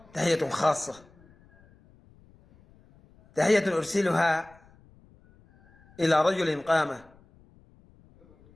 تحية خاصة، تحية أرسلها إلى رجل قام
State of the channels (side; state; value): left; noise; rumble, 29 dB below the sound